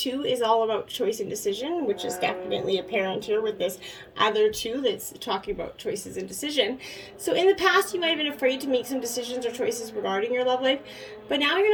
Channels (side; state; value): both; identical; correlation 1.00